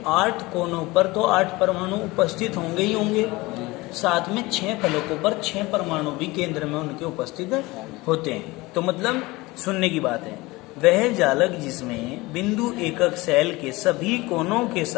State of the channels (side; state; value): right; quieter; 21.6 dB